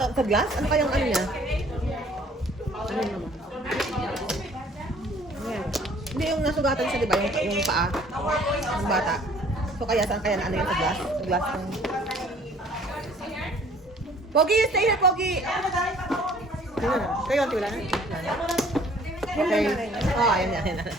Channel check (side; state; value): both; normal; correlation 0.56